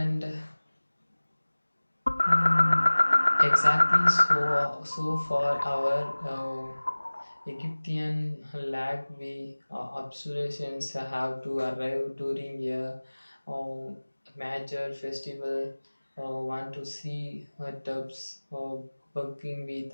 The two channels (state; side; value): inverted; both; correlation -1.00